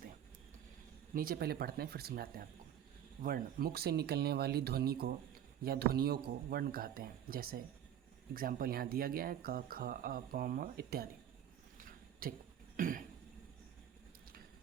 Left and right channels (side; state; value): left; quieter; 10.2 dB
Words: हैं। नीचे पहले पढ़ते हैं फिर समझाते हैं आपको। वर्ण, मुख से निकलने वाली ध्वनि को या ध्वनियों को वर्ण कहते हैं। जैसे एग्जाम्पल यहाँ दिया गया है, क ख अ प म इत्यादि। ठीक।